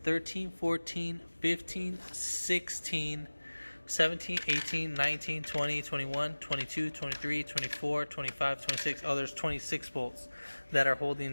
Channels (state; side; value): inverted; both; correlation -1.00